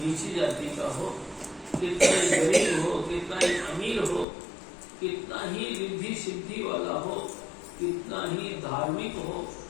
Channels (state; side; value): drops out; right; at 4.2 s